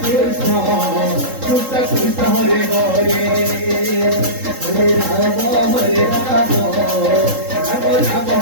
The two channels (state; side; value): late; left; 3.7 ms